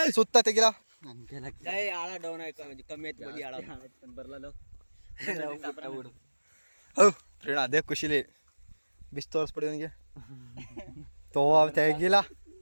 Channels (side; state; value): both; inverted; correlation -1.00